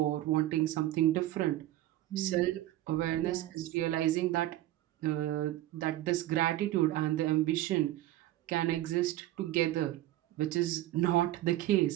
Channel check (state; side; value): quieter; left; 14.9 dB